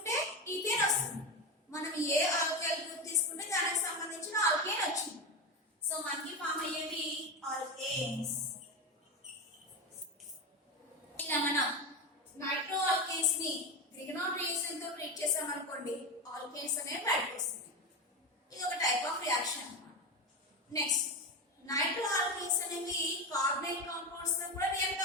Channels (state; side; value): normal; both; correlation 0.18